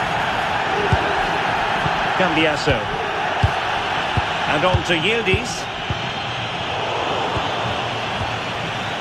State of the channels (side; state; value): both; identical; correlation 1.00